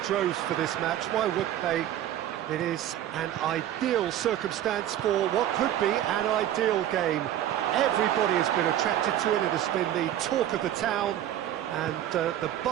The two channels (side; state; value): left; quieter; 11.9 dB